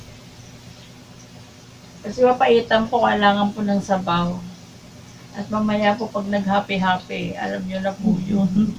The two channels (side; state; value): both; identical; correlation 1.00